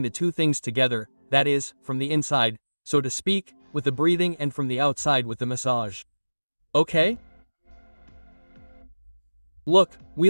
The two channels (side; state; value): both; inverted; correlation -1.00